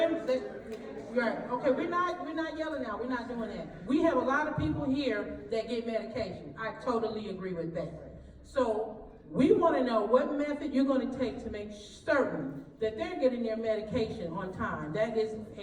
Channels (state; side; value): identical; both; correlation 1.00